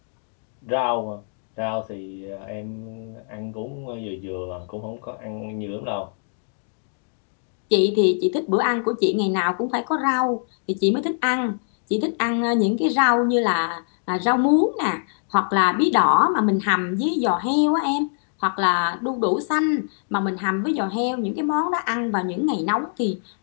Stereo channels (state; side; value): silent; right; 63 dB below the other